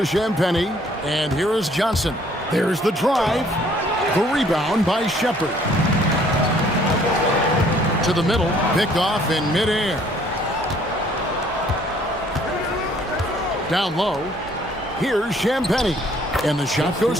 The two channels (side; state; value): both; normal; correlation 0.60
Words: Champagnie, and here is Johnson. There's the drive. The rebound by Shepard. To the middle, picked off in midair. Down low, here's Champagnie, and the shot goes